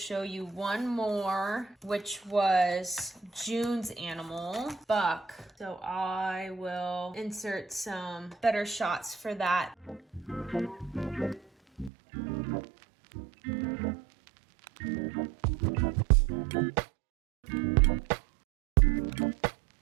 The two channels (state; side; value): drops out; left; at 11.9 s